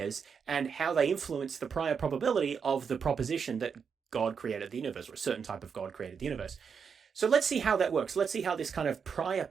and how they influence the prior probability of the proposition that God created the universe, or a certain type of God created the universe. So let's see how that works. Let's see how this kind of prior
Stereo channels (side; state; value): left; quieter; 6.4 dB